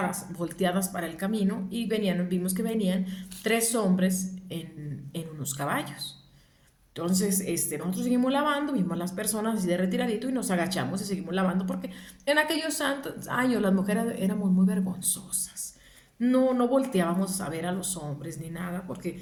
volteadas para el camino y vimos que venían 3 hombres en unos caballos. Entonces, nosotros seguimos lavando, vimos a las personas así de retiradito y nos agachamos y seguimos lavando porque en aquellos años las mujeres éramos muy vergonzosas. No volteábamos a ver a los hombres ni nada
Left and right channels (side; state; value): both; identical; correlation 1.00